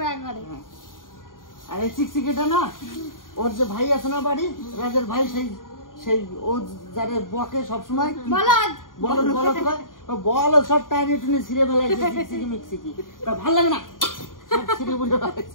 একবারে। আর এই চিকচিকিটা না, ওর যে ভাই আছে না বাড়ি, রাজের ভাই, সেই ও যারে বকে সবসময় বলো সব টাইনে টুনে ছিঁড়ে ফেলাইছে, চিকচিকি মিকচিকি, তা ভালো লাগে না, সব ছিঁড়ে বুঝে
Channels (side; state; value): right; late; 0.90 ms